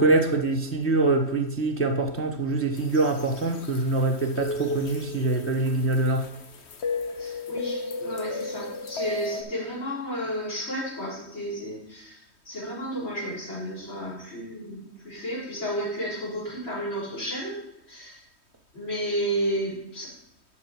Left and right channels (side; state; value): right; late; 3.2 ms